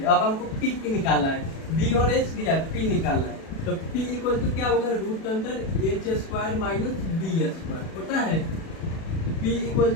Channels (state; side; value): late; right; 36 ms